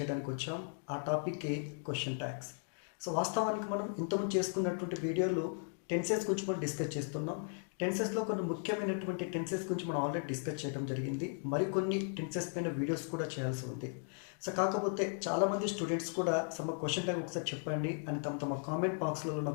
వచ్చాం. ఆ టాపిక్కే క్వశ్చన్ ట్యాగ్స్. సో వాస్తవానికి మనం ఇంతకుముందు చేసుకున్నటువంటి వీడియోలు టెన్సెస్ గురించి మనం డిస్కస్ చేస్తున్నాం. టెన్సెస్లో కొన్ని ముఖ్యమైనటువంటి టెన్సెస్ గురించి మనం ఆల్రెడీ డిస్కస్ చేయడం జరిగింది. మరికొన్ని టెన్సెస్ పైన వీడియోస్ కూడా చేయాల్సి ఉంది. సో కాకపోతే చాలామంది స్టూడెంట్స్ కూడా సమ క్వశ్చన్ ట్యాగ్ ఒకసారి చెప్పండి అని తమ కామెంట్ బాక్స్లలో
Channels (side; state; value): right; silent; 53 dB below the other